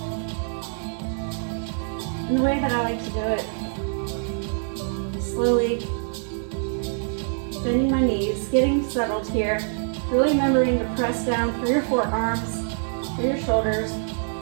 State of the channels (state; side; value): silent; left; digital silence